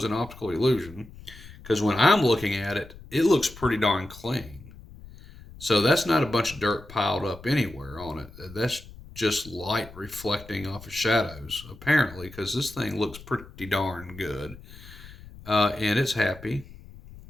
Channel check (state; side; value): noise; left; rumble, 18 dB below the sound